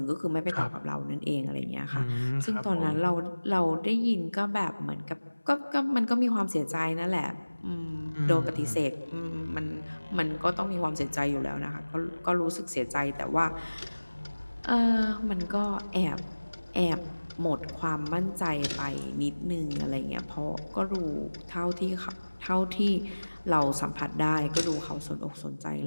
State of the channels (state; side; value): inverted; both; correlation -1.00